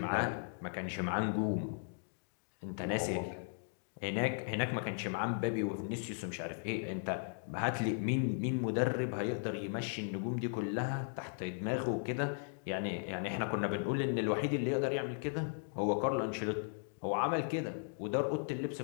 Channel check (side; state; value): right; silent; digital silence